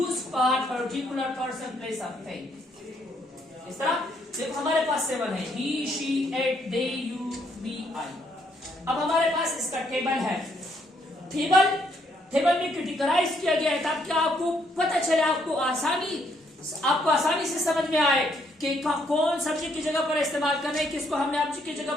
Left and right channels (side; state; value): both; normal; correlation 0.71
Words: for particular person, place of thing. इस तरह देखो हमारे पास 7 है, he, she, it, they, you, we, I. अब हमारे पास इसका टेबल है। टेबल में कैटेगराइज किया गया है ताकि आपको पता चले, आपको आसानी से समझ में आए कि कौन सब्जेक्ट की जगह पर इस्तेमाल करना है, किसको हमने ऑब्जेक्ट की जगह